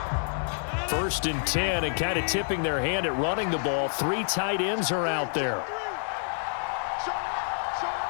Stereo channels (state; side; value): silent; right; digital silence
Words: First and 10, and kind of tipping their hand at running the ball. 3 tight ends are out there.